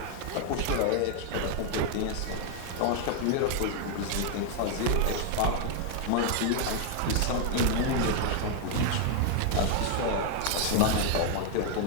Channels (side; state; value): both; different; correlation 0.00